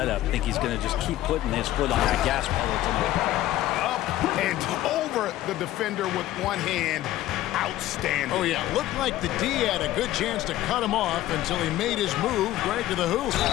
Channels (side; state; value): right; quieter; 14.5 dB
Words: I think he's going to just keep putting his foot on that gas pedal tonight. Up and over the defender with one hand. Outstanding. Oh, yeah. Looked like the D had a good chance to cut him off until he made his move right to the hoop.